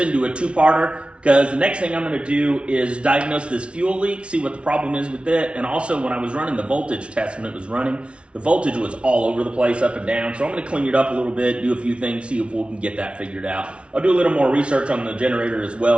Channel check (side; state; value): left; late; 0.060 ms